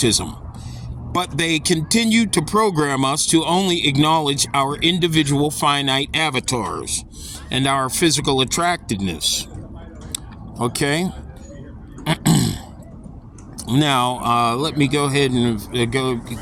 But they continue to program us to only acknowledge our individual finite avatars and our physical attractiveness. Okay? Now, let me go ahead and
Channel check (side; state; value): both; identical; correlation 1.00